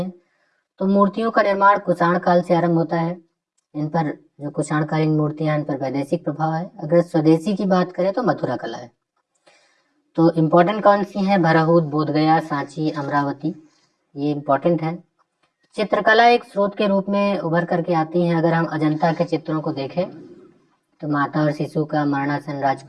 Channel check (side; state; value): both; identical; correlation 1.00